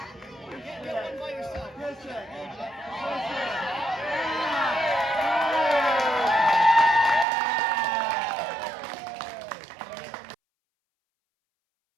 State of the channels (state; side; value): drops out; left; at 7.2 s